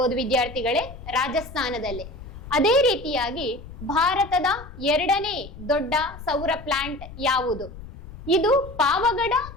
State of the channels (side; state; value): left; noise; rumble, 14 dB below the sound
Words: ವಿದ್ಯಾರ್ಥಿಗಳೇ, ರಾಜಸ್ಥಾನದಲ್ಲಿ. ಅದೇ ರೀತಿಯಾಗಿ ಭಾರತದ ಎರಡನೇ ದೊಡ್ಡ ಸೌರ ಪ್ಲಾಂಟ್ ಯಾವುದು? ಇದು ಪಾವಗಡ